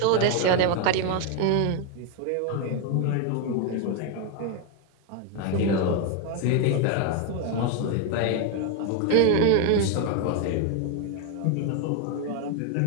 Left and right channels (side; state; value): both; different; correlation 0.01